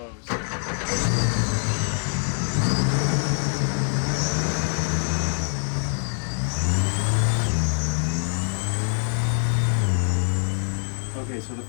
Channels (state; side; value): silent; right; 62 dB below the other